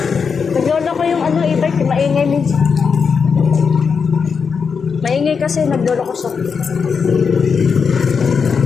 Naglolo ko yung ano, e-bike, maingay minsan. Maingay kasi naglolo ko sa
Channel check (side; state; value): right; quieter; 5.8 dB